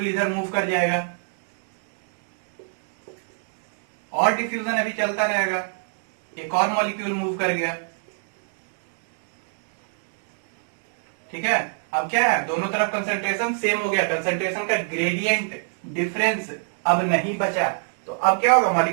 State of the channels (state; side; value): silent; left; digital silence